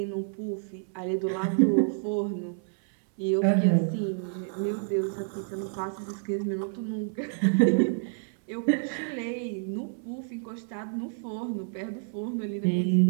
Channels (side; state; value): left; silent; 59 dB below the other